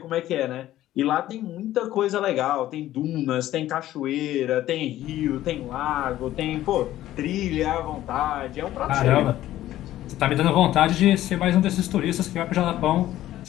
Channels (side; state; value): right; quieter; 13.9 dB